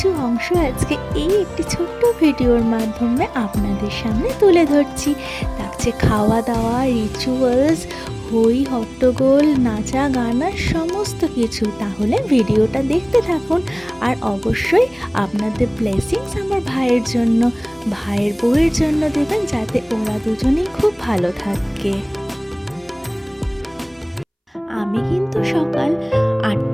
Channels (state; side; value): identical; both; correlation 1.00